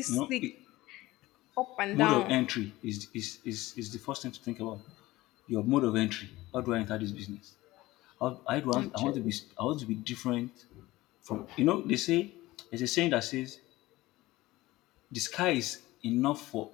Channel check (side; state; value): right; quieter; 18.3 dB